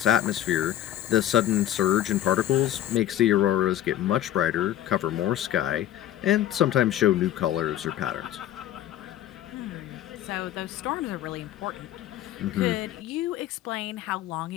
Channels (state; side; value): quieter; right; 12.4 dB